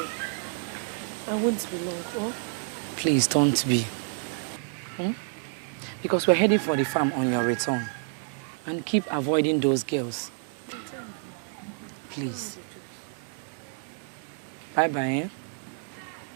I won't be long, oh? please don't be. Because we're heading for the farm on your return. And keep avoiding those girls. Please. Bye-bye, eh?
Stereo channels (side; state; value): left; silent; 59 dB below the other